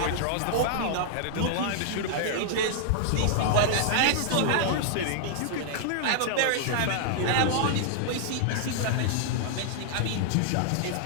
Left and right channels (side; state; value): both; different; correlation -0.01